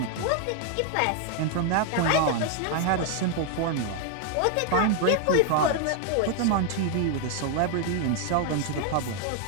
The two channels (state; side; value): different; both; correlation 0.00